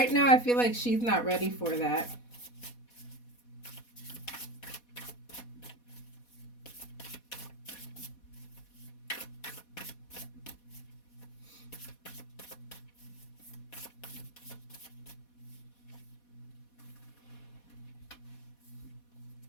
now I feel like she's not ready for that.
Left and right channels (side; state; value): right; late; 4.2 ms